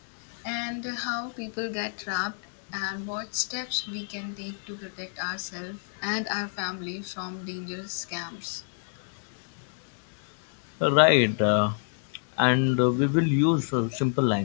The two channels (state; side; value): silent; right; 59 dB below the other